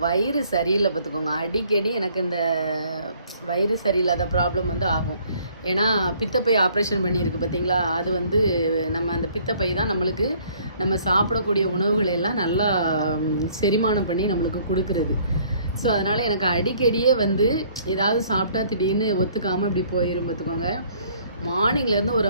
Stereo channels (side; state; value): both; inverted; correlation -0.59